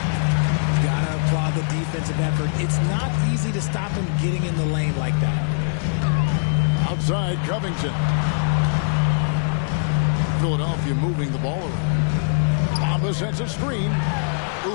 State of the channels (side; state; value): right; silent; digital silence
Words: Gotta applaud the defensive effort. It's not easy to stop him getting in the lane like that. Outside Covington. Philadelphia moving the ball around. Bamba sets a screen.